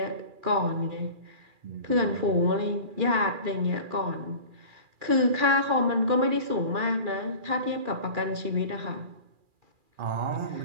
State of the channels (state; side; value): late; left; 2.4 ms